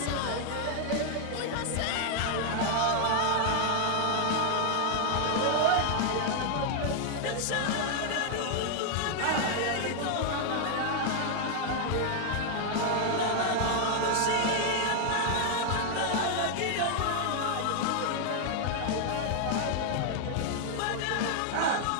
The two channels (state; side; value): different; both; correlation 0.00